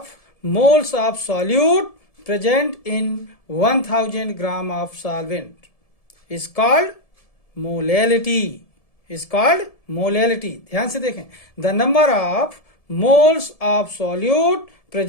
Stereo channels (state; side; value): late; right; 1.7 ms